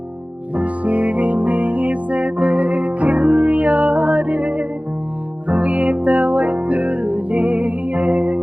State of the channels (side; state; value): left; late; 0.066 ms